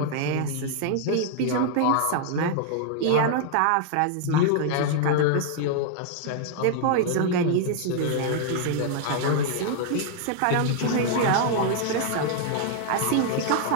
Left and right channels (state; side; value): different; both; correlation -0.01